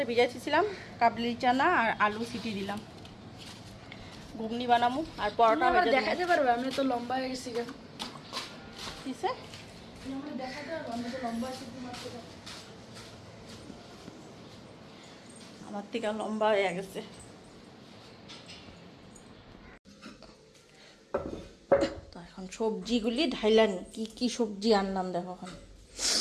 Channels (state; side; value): identical; both; correlation 1.00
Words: ভিজাইছিলাম, কাবলি চানা আর আলু সিটি দিলাম, ঘুগনি বানাবো আর পরোটা দেখাতে পারবে। আমি তো লম্বা হয়ে গেছি, কিসে আমার থেকে লম্বা হয়ে গেছে। তো এখন সবজিগুলি ঢাইলানি, কি কি সবজি আনলাম দেখো, এখন